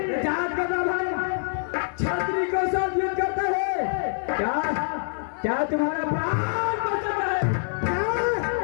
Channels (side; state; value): right; silent; 61 dB below the other